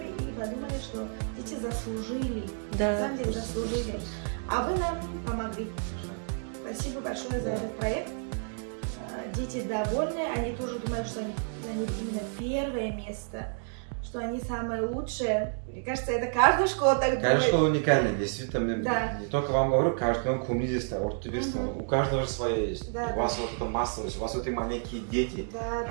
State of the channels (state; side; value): silent; left; 58 dB below the other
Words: и подумали, что дети заслужили. На Да. самом деле заслужили. А вы нам помогли. Спасибо большое за этот проект. Дети довольны, они тоже думают, что они именно первое место, что они самые лучшие. Мне кажется, это каждая школа так думает. Каждая школа уникальная, действительно. Да. Не только вам говорю, каждый коммунизист, ортодоксист, у каждого же свое есть. Да, у вас вот эта массовость, у вас вот эти маленькие дети. Да,